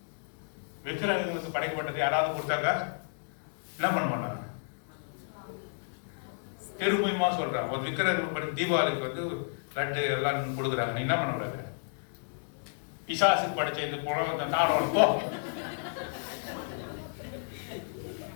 விக்கிரகங்களுக்கு படைக்கப்பட்டது யாராவது கொடுத்தாங்க என்ன பண்ண மாட்டாங்க, திரும்பியுமா சொல்றாங்க. ஒரு விக்கிரகங்களுக்கு படி தீபாவளிக்கு வந்து லட்டு எல்லாம் கொடுக்குறாங்க, நீ என்ன பண்ண கூடாது, பிசாசுக்கு படைச்ச இந்த புலவத்தை சாப்பிடணும் போ.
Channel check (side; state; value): right; silent; digital silence